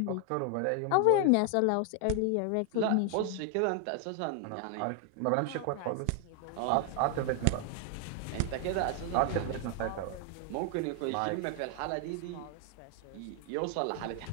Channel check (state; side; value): different; both; correlation 0.00